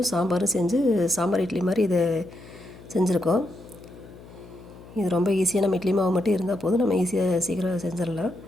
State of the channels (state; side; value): noise; left; hum, 19 dB below the sound